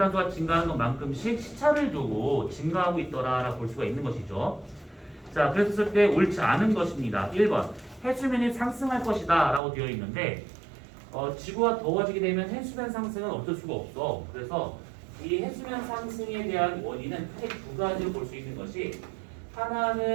증가하는 것만큼씩 시차를 두고 증가하고 있더라라고 볼 수가 있는 것이죠. 자, 그랬을 때 옳지 않은 것입니다. 1번 해수면이 상승할 것이다 라고 되어 있는데 지구가 더워지게 되면 해수면 상승은 어쩔 수가 없어. 그래서 이 해수면 상승에 대한 원인은 크게 두 가지로 볼 수 있는 것이,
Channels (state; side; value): drops out; left; at 9.6 s